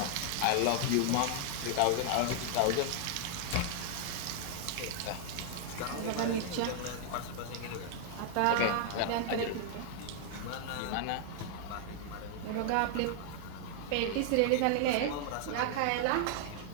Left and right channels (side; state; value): both; different; correlation 0.00